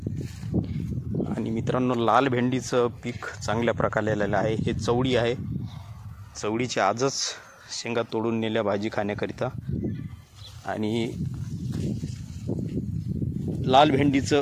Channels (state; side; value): identical; both; correlation 1.00